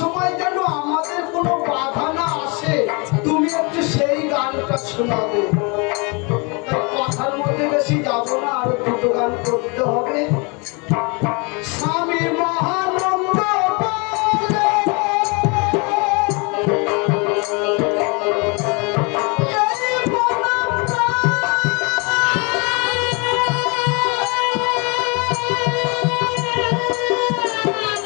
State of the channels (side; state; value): right; quieter; 30.9 dB